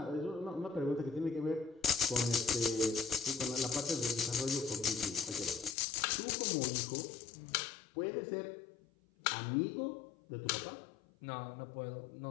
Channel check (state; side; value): drops out; right; at 5.8 s